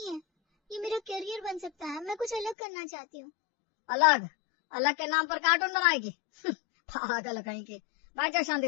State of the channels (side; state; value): right; drops out; at 2.6 s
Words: है, ये मेरा करियर बन सकता है। मैं कुछ अलग करना चाहती हूँ। अलग? अलग के नाम पर कार्टून बनाएगी? पागल कहीं की। बैठ जा